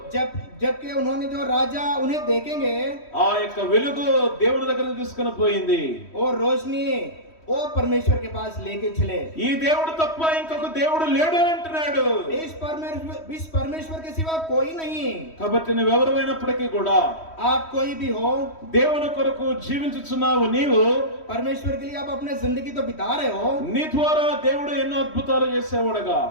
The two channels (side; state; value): right; late; 3.1 ms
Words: जबकि उन्होंने जो राजा उन्हें देखेंगे, ఆ యొక్క వెలుగు దేవుని దగ్గరికి తీసుకుని పోయింది. और रोशनी वो परमेश्वर के पास लेके चले। ఈ దేవుడు తప్ప ఇంకొక దేవుడు లేడు అని అంటున్నాడు. इस परमेश्वर के सिवा कोई नहीं। కాబట్టి నువ్వెవరైనప్పటికీ కూడా आप कोई भी हो, దేవుని కొరకు జీవించుచున్నావు. నీవు परमेश्वर के लिए आप अपने जिंदगी तो बिता रहे हो। నీ ద్వారా దేవుడు ఎన్నో అద్భుతాలు చేసేవాడుగా